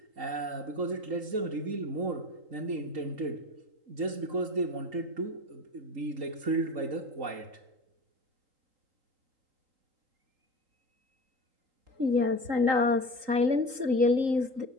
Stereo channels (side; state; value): left; late; 3.8 ms